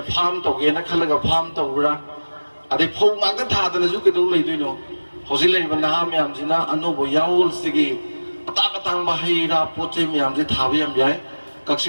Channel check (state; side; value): inverted; both; correlation -1.00